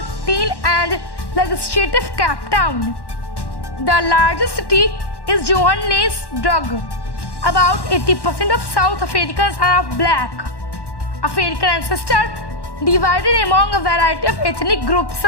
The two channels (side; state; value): right; late; 1.1 ms